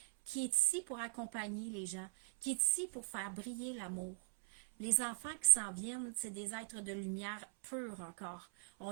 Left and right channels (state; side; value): quieter; left; 19.2 dB